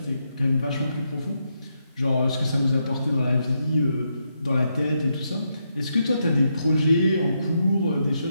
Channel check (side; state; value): both; inverted; correlation -0.81